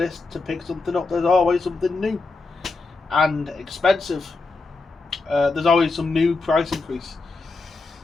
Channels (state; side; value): quieter; right; 3.8 dB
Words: to pick something up, there's always something new. And expensive. There's always some new price increase.